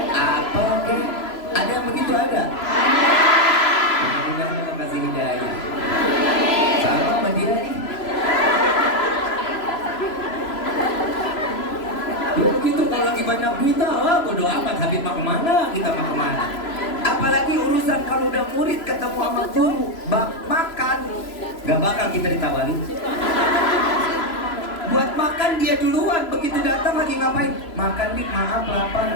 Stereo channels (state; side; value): late; right; 3.0 ms